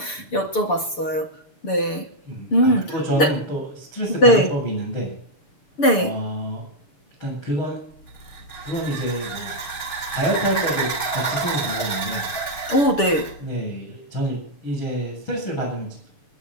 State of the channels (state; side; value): late; right; 6.8 ms